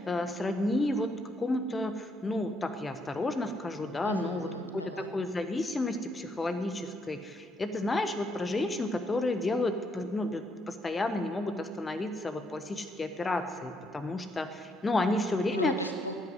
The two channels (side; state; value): both; normal; correlation 0.74